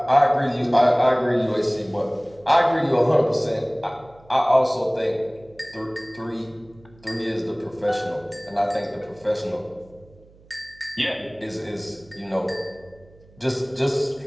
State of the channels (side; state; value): right; noise; hum, 26 dB below the sound